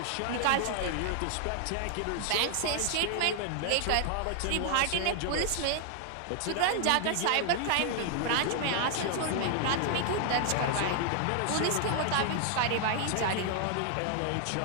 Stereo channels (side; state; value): both; different; correlation 0.00